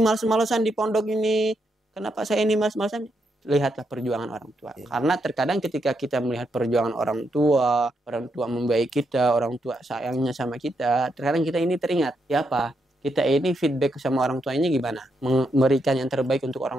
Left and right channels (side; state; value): both; normal; correlation 0.80